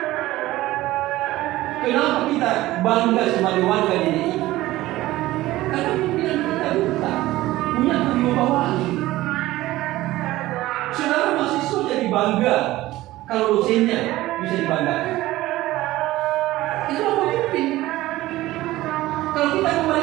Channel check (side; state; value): left; quieter; 16.9 dB